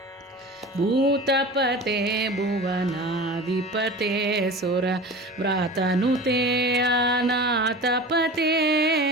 भूतपते भुवनाधिपते सुर व्रातनुते अनाथपते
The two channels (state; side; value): normal; both; correlation 0.35